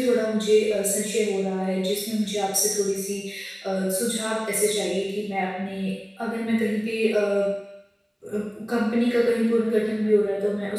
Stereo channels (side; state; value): both; identical; correlation 1.00